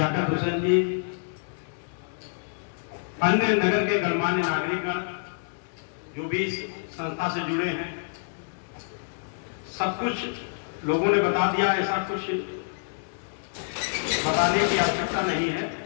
हुसैन जी, अन्य नगर के गणमान्य नागरिकगण जो भी इस संस्था से जुड़े हैं, सब कुछ लोगों ने बता दिया। ऐसा कुछ बताने की आवश्यकता नहीं है।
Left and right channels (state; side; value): silent; right; digital silence